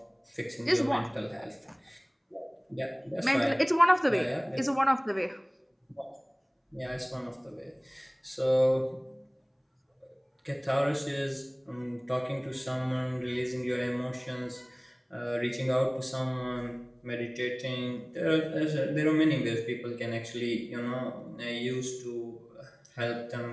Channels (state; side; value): identical; both; correlation 1.00